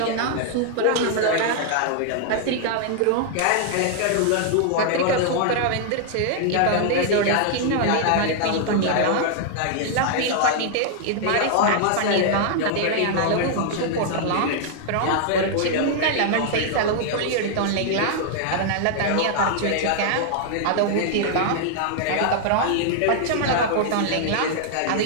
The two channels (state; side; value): different; both; correlation 0.00